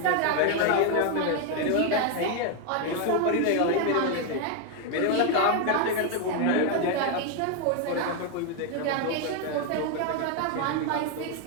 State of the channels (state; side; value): different; both; correlation 0.01